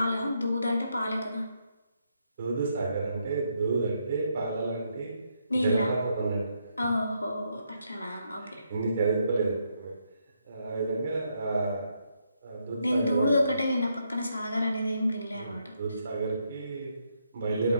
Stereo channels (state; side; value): inverted; both; correlation -0.78